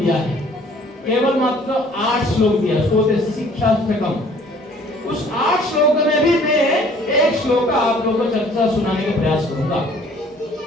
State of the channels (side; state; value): both; normal; correlation 0.55